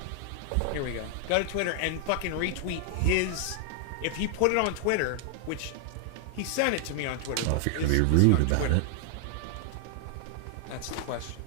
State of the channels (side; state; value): both; different; correlation 0.00